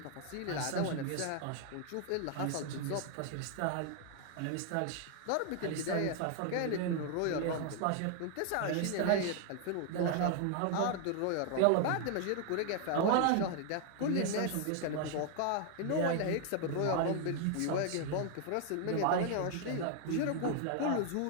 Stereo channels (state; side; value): different; both; correlation 0.00